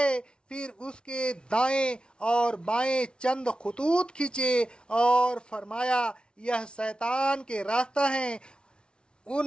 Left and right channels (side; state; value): right; late; 0.056 ms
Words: پھر اس کے دائیں اور بائیں چند خطوط کھینچے اور فرمایا، یہ شیطان کے راستہ ہیں،